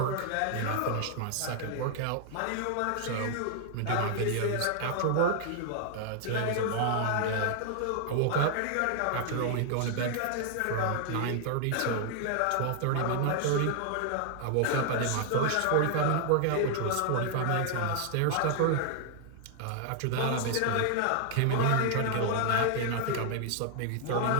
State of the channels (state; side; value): different; both; correlation 0.00